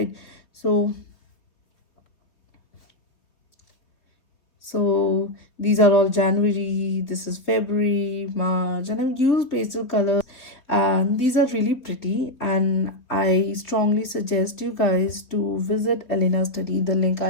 So these are all January, this is February, March, and I've used pastel colors, and these are really pretty. And I strongly suggest you guys to visit Elena Study. The link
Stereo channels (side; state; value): right; late; 3.7 ms